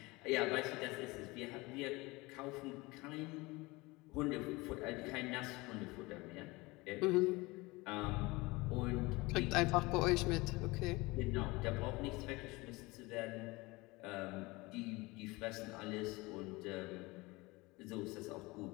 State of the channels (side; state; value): right; quieter; 23.0 dB